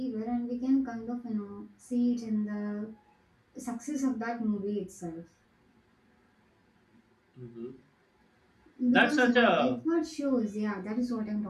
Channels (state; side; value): identical; both; correlation 1.00